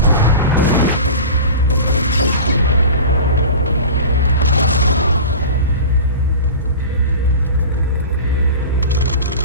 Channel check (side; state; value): both; inverted; correlation -0.34